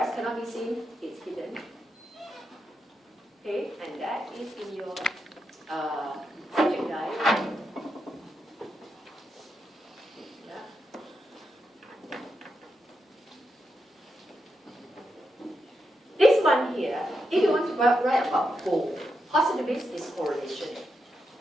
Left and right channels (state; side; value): normal; both; correlation 0.85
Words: cannot be seen, it's hidden. Okay, and that is in your subject guide. Yeah. This one here, if you want to write about goal, positivist is correlation.